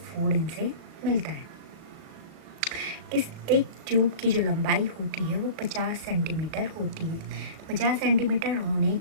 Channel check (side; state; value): left; late; 37 ms